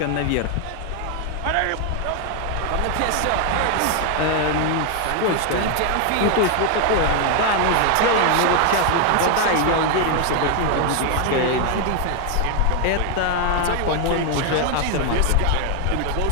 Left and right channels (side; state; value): both; different; correlation 0.01